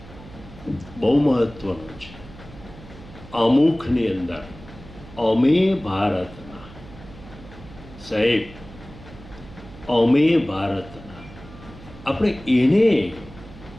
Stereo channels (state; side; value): noise; right; hum, 18 dB below the sound